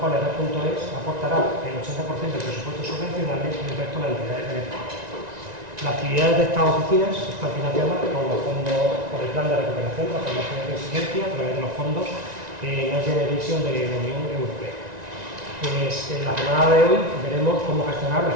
cuales Red.es aportará el 80% del presupuesto subvencional y el resto de las entidades beneficiarias. Las actividades de estas oficinas están financiadas por el Plan de Recuperación, Transformación y Resiliencia a través de los fondos Next Generation de la Unión Europea. En la jornada de hoy veremos cómo gestionar de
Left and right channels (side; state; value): left; late; 1.9 ms